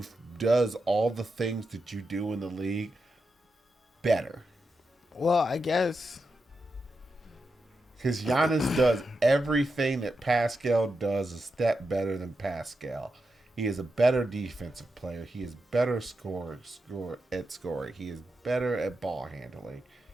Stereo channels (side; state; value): both; normal; correlation 0.87